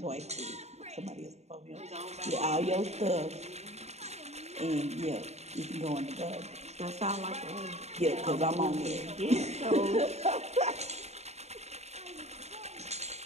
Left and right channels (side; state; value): left; late; 0.32 ms